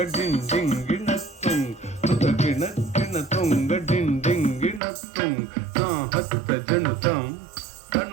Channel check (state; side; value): drops out; left; at 4.8 s